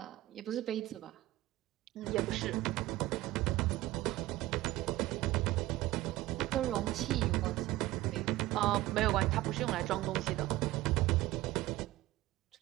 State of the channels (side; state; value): left; quieter; 17.2 dB